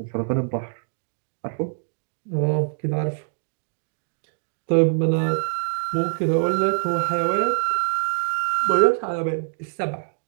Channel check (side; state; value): left; silent; 62 dB below the other